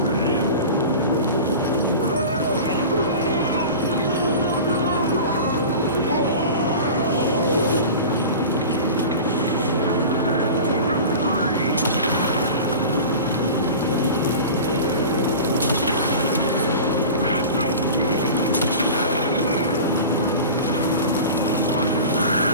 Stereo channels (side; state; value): both; inverted; correlation -0.34